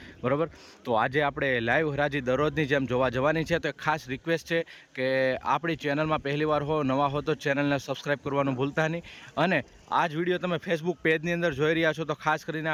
બરાબર। તો આજે આપણે લાઈવ હરાજી દરરોજની જેમ જોવા જવાની છે। તો ખાસ રિક્વેસ્ટ છે કે આપણી ચેનલમાં પહેલીવાર હો, નવા હો તો ચેનલને સબસ્ક્રાઈબ કરવાનું ભૂલતા નહીં। અને આ જ વિડીયો તમે ફેસબુક પેજની અંદર જોઈ રહ્યા છો તો ખાસ કરીને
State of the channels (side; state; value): both; identical; correlation 1.00